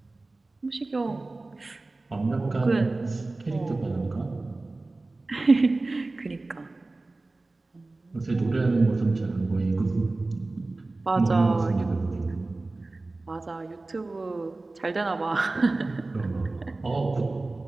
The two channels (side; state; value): left; quieter; 3.2 dB